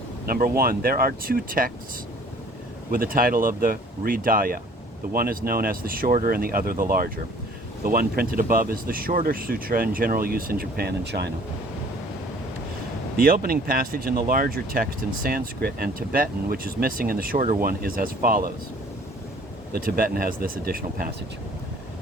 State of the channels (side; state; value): both; normal; correlation 0.53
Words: Number 1, there are 2 texts with the title of the Hridaya. The one is known as the shorter and the other the larger. The one printed above is the shorter sutra in general use in Japan and China. The opening passage in the larger text in Sanskrit and Tibetan, which is missing in the shorter one, is as follows. The Tibetan has this additional passage.